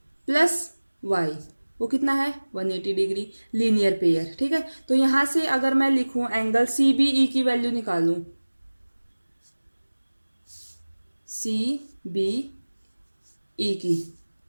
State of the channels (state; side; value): inverted; both; correlation -1.00